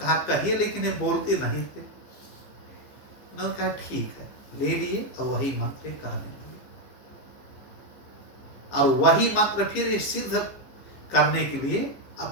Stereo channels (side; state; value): right; late; 15 ms